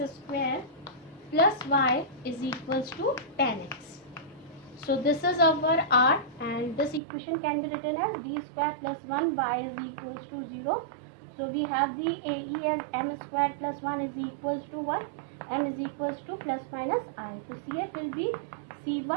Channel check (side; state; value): left; drops out; at 7.0 s